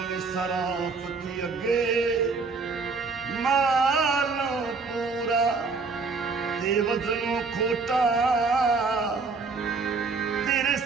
ਸਰਾਫਤੀ ਅੱਗੇ ਮਾਲੋ ਪੂਰਾ ਤੇ ਵਜ਼ਨੋਂ ਖੋਟਾ ਤੇਰੇ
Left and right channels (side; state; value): left; quieter; 4.4 dB